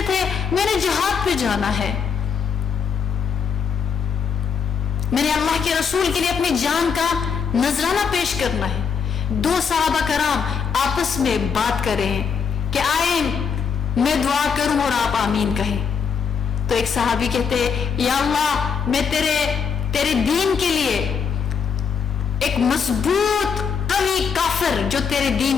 تھے میں نے جہاد پہ جانا ہے، میں نے اللہ کے رسول کے لیے اپنی جان کا نذرانہ پیش کرنا ہے۔ دو صحابہ کرام آپس میں بات کر رہے ہیں کہ آئے میں دعا کروں اور آپ آمین کہیں۔ تو ایک صحابی کہتے یا اللہ میں تیرے دین کے لیے ایک مضبوط قوی کافر جو تیرے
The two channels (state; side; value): quieter; right; 6.4 dB